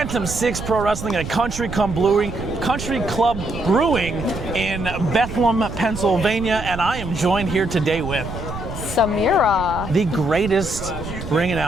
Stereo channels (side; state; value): right; noise; rumble, 9 dB below the sound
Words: 6 Pro Wrestling at Country Club Brewing in Bethlehem, Pennsylvania, and I am joined here today with Samira, the greatest ring